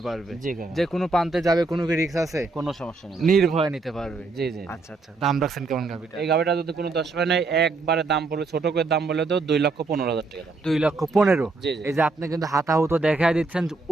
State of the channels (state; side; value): quieter; left; 3.6 dB